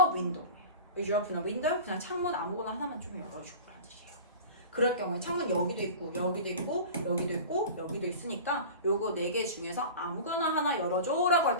window? Would you open a window? 그냥 창문 아무거나 하나만 좀 열어주라는 뜻이에요. 그럴 경우에 창문 여기도 있고 여기도 있고 여기도 있고 여기도 있으니까 요거 4개 중에서 아무거나 하나 열어줘 라고 할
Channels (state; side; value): inverted; both; correlation -0.35